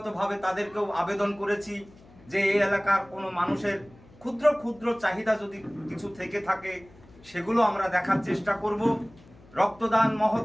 তাদেরকেও আবেদন করেছি যে এই এলাকার কোনো মানুষের ক্ষুদ্র ক্ষুদ্র চাহিদা যদি কিছু থেকে থাকে, সেগুলো আমরা দেখার চেষ্টা করব। রক্তদান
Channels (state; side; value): noise; left; hum, 25 dB below the sound